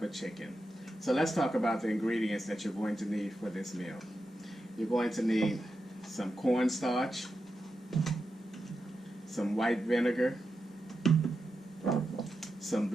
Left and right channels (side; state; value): both; normal; correlation 0.88